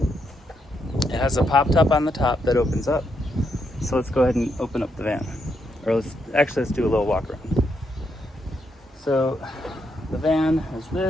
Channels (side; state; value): both; normal; correlation 0.79